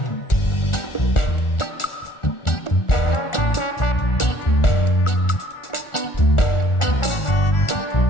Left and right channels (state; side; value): late; right; 1.4 ms